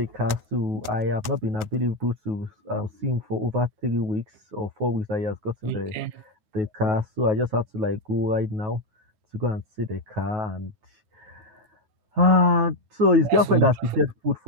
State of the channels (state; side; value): late; left; 9.1 ms